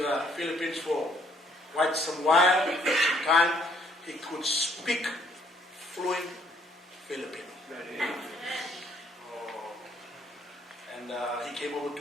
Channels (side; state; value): both; normal; correlation 0.66